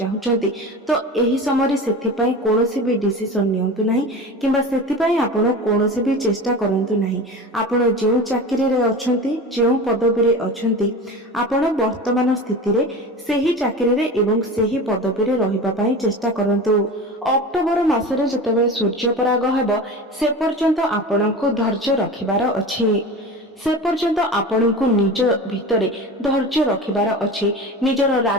ତ ଏହି ସମୟରେ ସେଥିପାଇଁ କୌଣସି ବି ଡିସିସନ ନିଅନ୍ତୁ ନାହିଁ କିମ୍ବା ସେଥିପାଇଁ ଆପଣ କୌଣସି ବି ଚେଷ୍ଟା କରନ୍ତୁ ନାହିଁ। ଆପଣ ଯେଉଁ ଚାକିରିରେ ଅଛନ୍ତି, ଯେଉଁ ପଦବୀରେ ଅଛନ୍ତି, ଆପଣ ବର୍ତ୍ତମାନ ସ୍ଥିତିରେ ସେହି ଚାକିରିରେ ଏବଂ ସେହି ପଦବୀରେ ରହିବା ପାଇଁ ଚେଷ୍ଟା କରନ୍ତୁ। ଅକ୍ଟୋବର ମାସରେ ଯେତେବେଳେ ସୂର୍ଯ୍ୟପରାଗ ହେବ ସେ ପର୍ଯ୍ୟନ୍ତ ଆପଣଙ୍କୁ ଧୈର୍ଯ୍ୟ ରଖିବାର ଅଛି। ସେ ପର୍ଯ୍ୟନ୍ତ ଆପଣଙ୍କୁ ନିଜ ଭିତରେ ଧୈର୍ଯ୍ୟ ରଖିବାର ଅଛି। ନିଜର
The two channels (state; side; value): normal; both; correlation 0.31